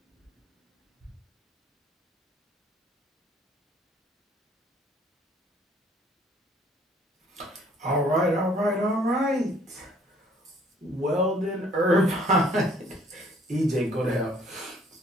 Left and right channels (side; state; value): both; normal; correlation 0.60